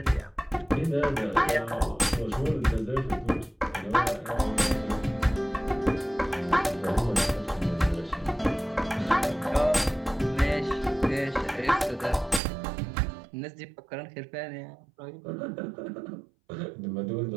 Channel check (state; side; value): drops out; left; at 12.4 s